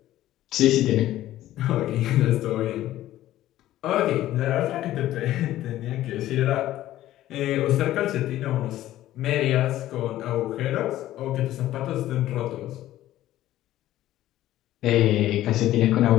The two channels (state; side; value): quieter; right; 14.1 dB